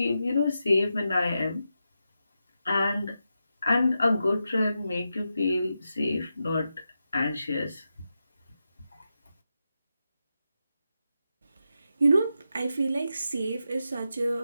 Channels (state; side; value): inverted; both; correlation -0.88